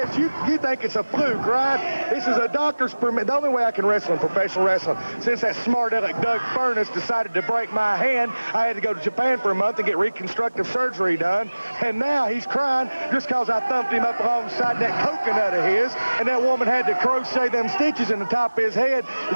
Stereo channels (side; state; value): both; inverted; correlation -1.00